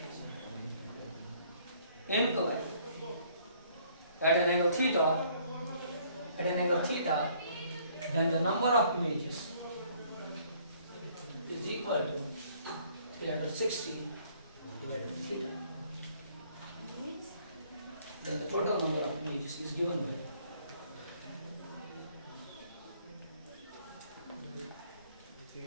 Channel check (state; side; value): inverted; both; correlation -0.62